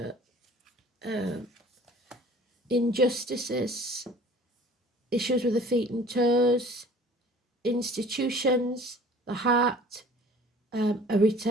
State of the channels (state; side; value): normal; both; correlation 0.48